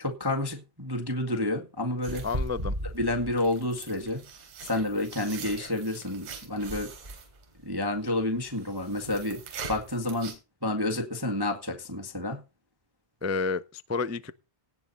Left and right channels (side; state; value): left; late; 1.1 ms